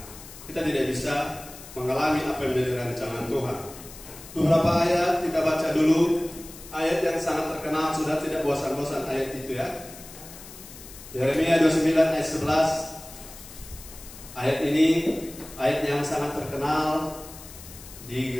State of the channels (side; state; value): left; noise; hiss, 16 dB below the sound